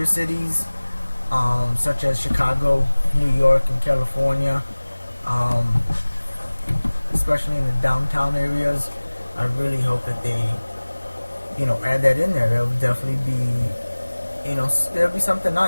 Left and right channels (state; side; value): inverted; both; correlation -1.00